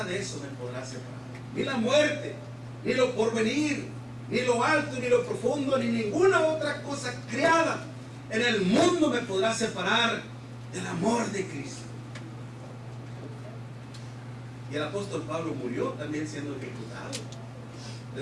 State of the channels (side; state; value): both; identical; correlation 1.00